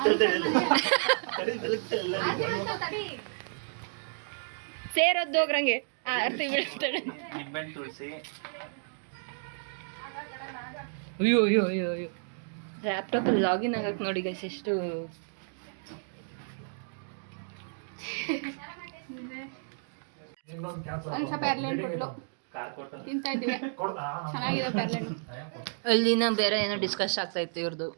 ಎಲ್ಲ. ಸೇರೊದ್ದೋಗ್ರಂಗೆ ಆರ್ತಿ ಬೀಳ್ತಾಳೆ. ತುಳಸಿ ಅಯ್ಯೋ ಅಯ್ಯೋ ಅಯ್ಯೋ ಅಯ್ಯೋ. ಲ್ಯಾಪ್ಟಾಪಲ್ಲಿ ಲಾಗಿನ್ ಆಗಕ್ಕೆ ನೋಡಿ ಗೈಸ್ ಎಷ್ಟು. ಅನುಷಾ ಪೇರ್ಲೆಂಡ್ ಕೊಟ್ಲು, ತಿಂತಾ ಇದ್ವಿ. ಚೆನ್ನಾಗಿದೆ ಪೇರ್ಲೆಂಡ್. ಅಲ್ಲಿನ ಬೇರೆ ಏನೋ ಡಿಸ್ಕಸ್ ಆಗ್ತಾ ಇತ್ತು ಇವ್ರದ್ದು.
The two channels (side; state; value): left; silent; digital silence